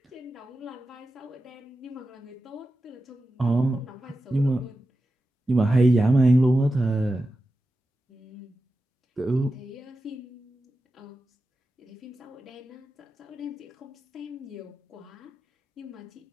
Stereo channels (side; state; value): both; normal; correlation 0.92